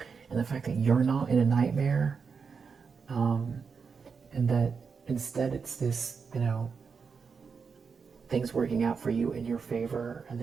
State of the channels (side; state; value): left; quieter; 5.6 dB